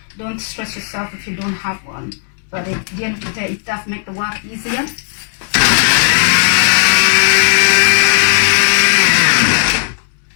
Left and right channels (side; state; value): right; silent; 57 dB below the other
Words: Don't stress yourself if you don't have one. But at the end of the day, it does make the work easier.